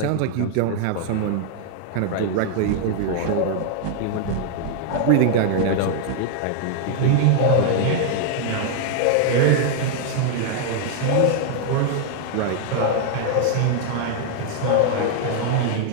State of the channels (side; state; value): both; different; correlation 0.00